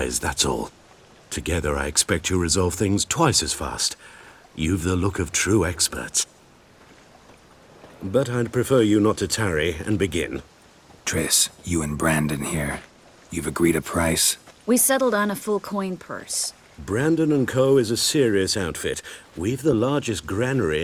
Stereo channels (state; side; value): identical; both; correlation 1.00